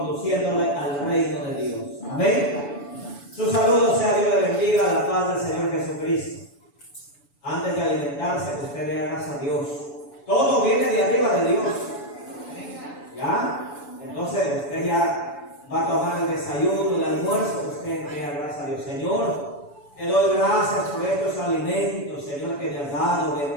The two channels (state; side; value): late; right; 7.0 ms